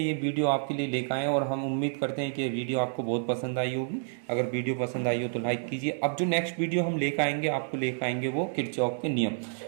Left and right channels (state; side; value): silent; left; digital silence